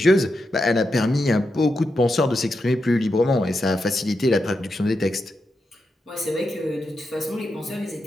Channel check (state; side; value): normal; both; correlation 0.86